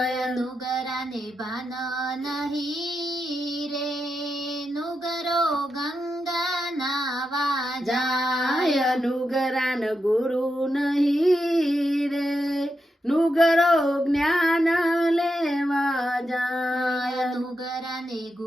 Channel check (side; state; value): both; normal; correlation 0.86